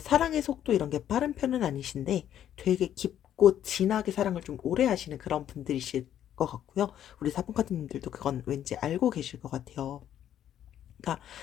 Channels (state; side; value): quieter; right; 10.7 dB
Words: 사랑의 속도 이런 게 빠른 편은 아니신데 되게 깊고 진하게 사랑을 좀 오래 하시는 그런 분들이실 것 같고요. 우리 사분카드님들도 그건 왠지 알고 계실 것 같아요. 그러니까